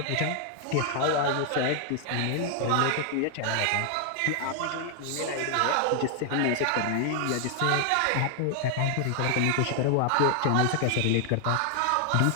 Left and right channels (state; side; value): different; both; correlation 0.00